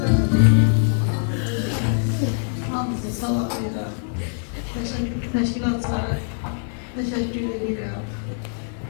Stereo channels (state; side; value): silent; right; 63 dB below the other